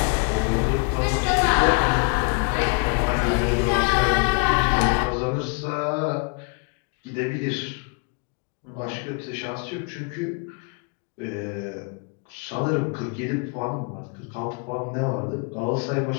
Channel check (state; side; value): quieter; right; 34.6 dB